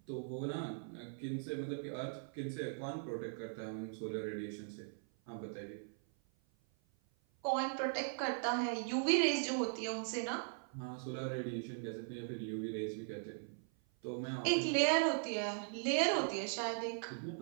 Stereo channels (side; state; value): left; silent; 51 dB below the other